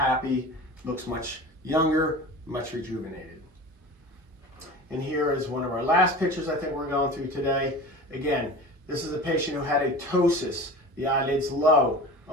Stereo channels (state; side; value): normal; both; correlation 0.35